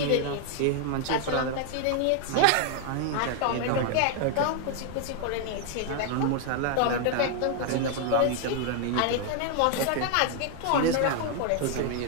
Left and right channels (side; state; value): both; different; correlation 0.00